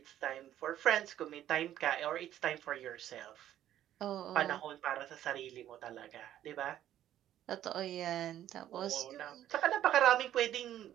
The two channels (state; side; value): quieter; left; 11.9 dB